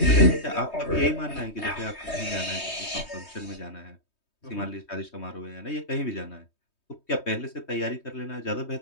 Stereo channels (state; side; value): late; right; 3.2 ms